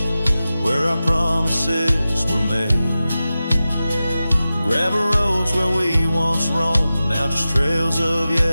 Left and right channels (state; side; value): inverted; both; correlation -0.94